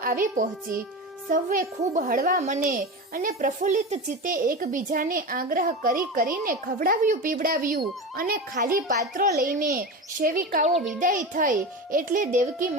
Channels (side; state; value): both; normal; correlation 0.24